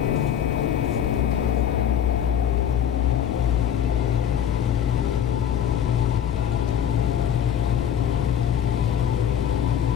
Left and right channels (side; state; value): right; quieter; 9.2 dB